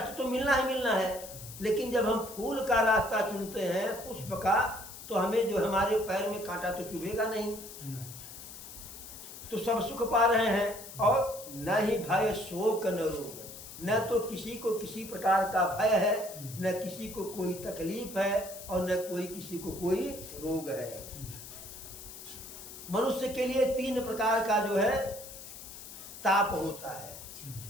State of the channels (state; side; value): noise; left; hiss, 13 dB below the sound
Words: तो मिलना ही मिलना है। लेकिन जब हम फूल का रास्ता चुनते हैं, पुष्प का, तो हमें जो हमारे पैर में कांटा तो चुभेगा नहीं। तो सब सुख पा रहे हैं। और न ही भय शोक न रोग, न तो किसी को किसी प्रकार का भय है, न किसी को कोई तकलीफ है, और न कोई किसी को कोई रोग है। मनुष्य के लिए 3 प्रकार का जो है ताप होता है,